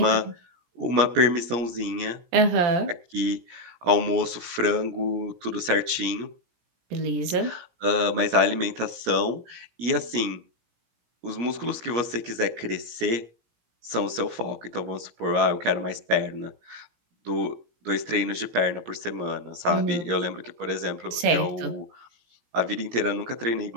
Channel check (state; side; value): late; left; 17 ms